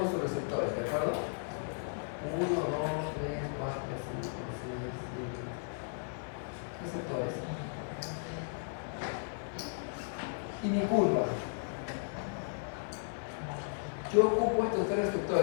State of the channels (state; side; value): silent; right; 54 dB below the other